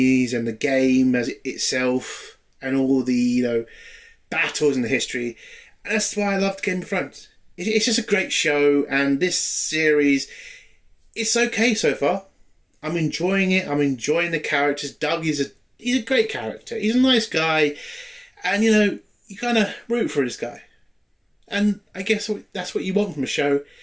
and the game as itself, and all the, battles in the history. And that's why I loved Game of Thrones. It's just a great show, and this series, it's okay so far. I'm enjoying it. I'm enjoying the characters. Doug he's a great character. He's a nice guy, and, you kind of root for this guy. And I guess that's what you want from a show.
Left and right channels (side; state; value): both; identical; correlation 1.00